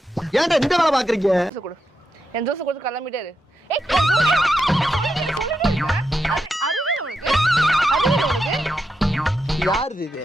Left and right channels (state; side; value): normal; both; correlation 0.86